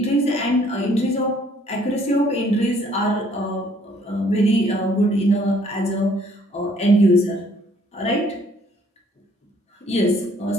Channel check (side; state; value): both; normal; correlation 0.62